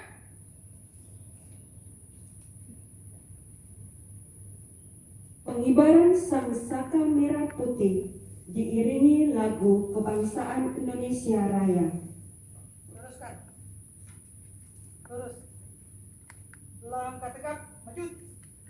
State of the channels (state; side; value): identical; both; correlation 1.00